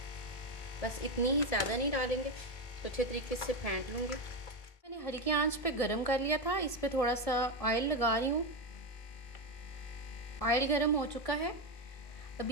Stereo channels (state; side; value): late; right; 1.7 ms